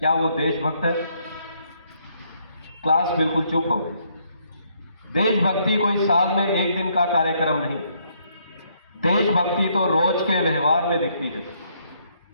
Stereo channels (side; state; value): both; inverted; correlation -0.71